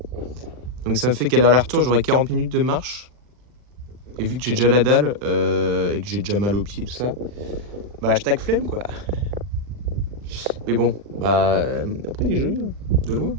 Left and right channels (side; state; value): left; late; 40 ms